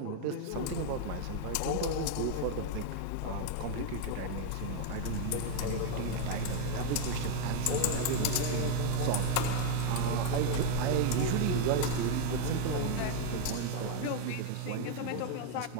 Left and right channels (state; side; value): different; both; correlation 0.00